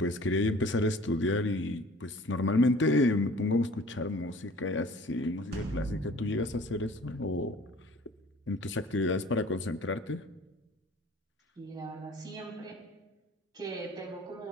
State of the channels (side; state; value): both; normal; correlation 0.48